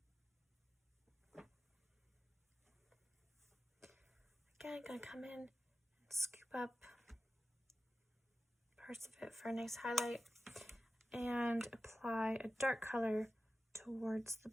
Again, I'm going to come in and scoop up parts of it for a nice highlight and apply a dark color towards the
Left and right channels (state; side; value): normal; both; correlation 0.94